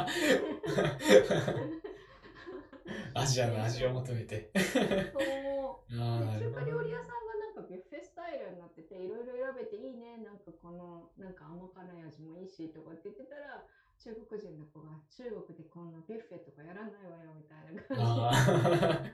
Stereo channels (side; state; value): both; identical; correlation 1.00